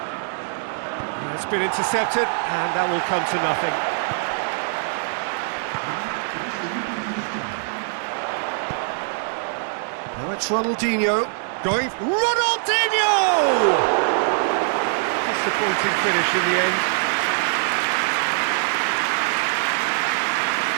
It's been intercepted, and that will come to nothing. Now it's Ronaldinho going... Ronaldinho! Disappointing finish in the end.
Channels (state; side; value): silent; left; digital silence